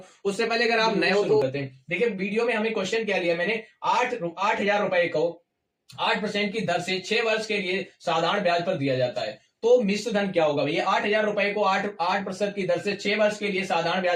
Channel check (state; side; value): identical; both; correlation 1.00